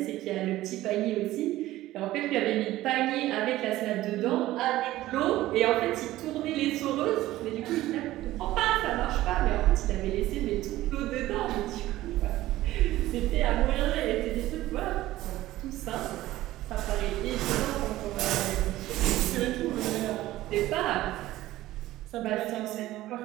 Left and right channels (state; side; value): quieter; left; 15.9 dB